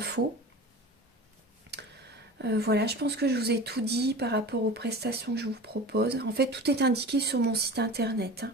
Voilà, je pense que je vous ai tout dit par rapport aux prestations que je vous propose. En fait, tout est indiqué sur mon site internet, hein.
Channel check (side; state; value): both; normal; correlation 0.35